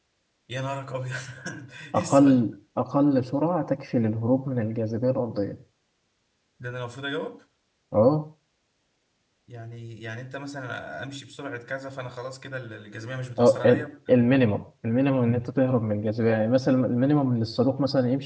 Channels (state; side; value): identical; both; correlation 1.00